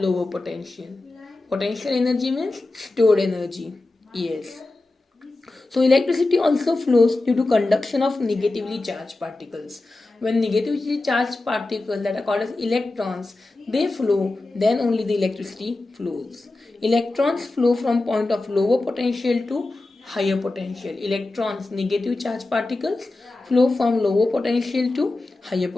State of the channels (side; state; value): right; quieter; 3.0 dB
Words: potential. Potential energy means stored energy. Yes. So electricity also flows due to conduction of negatively charged particles. When negatively charged particles that are called as electrons, they flow, then only the electricity flows. Electrons flow from point of lower potential to higher potential. Electrons, negative charged particles, flow from lower potential to higher